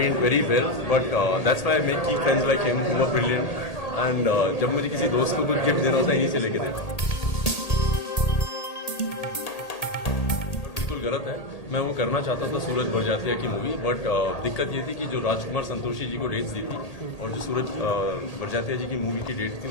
very well, but that's why I make keep friends like him who are brilliant. And जब मुझे किसी दोस्त को कुछ gift देना होता है, यहीं से लेके देता हूँ. बिल्कुल गलत है. मैं वो करना चाहता था सूरज बरजातिया की मूवी, बट दिक्कत ये थी कि जो राजकुमार संतोषी जी को डेट्स दी थी और जो सूरज बरजातिया जी की मूवी की डेट थी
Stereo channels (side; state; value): right; late; 1.8 ms